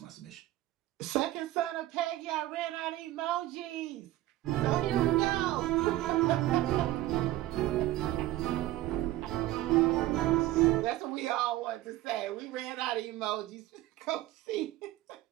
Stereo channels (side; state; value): left; quieter; 15.8 dB